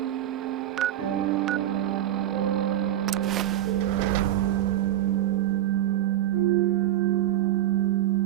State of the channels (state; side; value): quieter; left; 12.7 dB